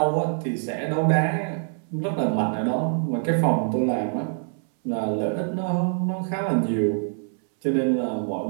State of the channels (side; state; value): left; silent; 62 dB below the other